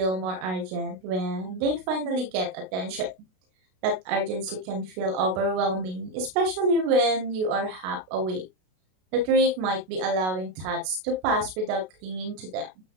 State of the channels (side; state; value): left; late; 32 ms